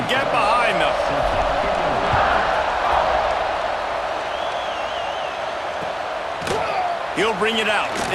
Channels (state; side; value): identical; both; correlation 1.00